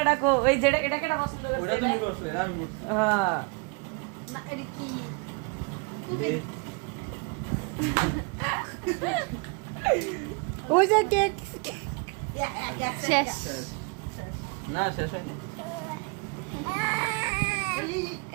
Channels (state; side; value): quieter; left; 32.7 dB